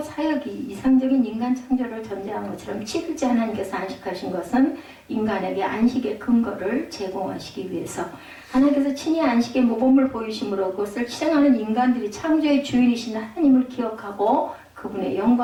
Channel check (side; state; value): both; identical; correlation 1.00